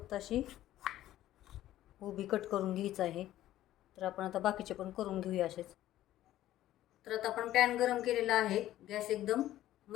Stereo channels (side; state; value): right; quieter; 13.7 dB